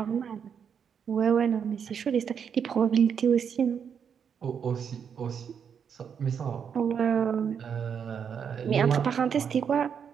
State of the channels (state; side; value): quieter; left; 7.3 dB